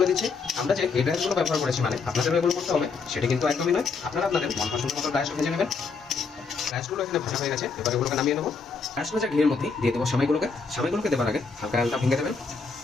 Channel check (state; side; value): quieter; right; 4.7 dB